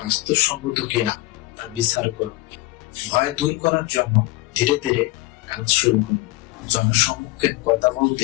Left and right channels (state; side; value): quieter; right; 19.6 dB